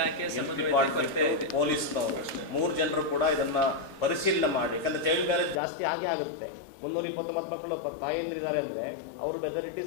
ಡಿಪಾರ್ಟ್ಮೆಂಟ್ ಪೊಲೀಸ್ನವರು 3 ಜನರು ಕೂಡ ಇದನ್ನು ಪರಿಶೀಲನೆ ಮಾಡಿ. ಯಾಕಂದರೆ ಚೈಲ್ಡ್ ಮ್ಯಾರೇಜ್ ಜಾಸ್ತಿ ಆಗುತ್ತೆ. 329 ಮಕ್ಕಳು ತಾಯಂದಿರಿದ್ದಾರೆ ಅಂದರೆ ಅವರು ಮೆಜಾರಿಟಿ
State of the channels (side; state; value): right; drops out; at 5.6 s